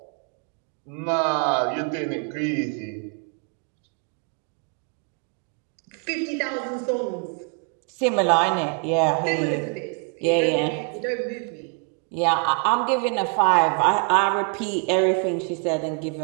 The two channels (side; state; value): left; quieter; 37.1 dB